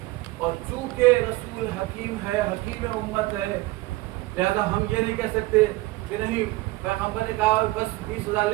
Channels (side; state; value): left; quieter; 20.0 dB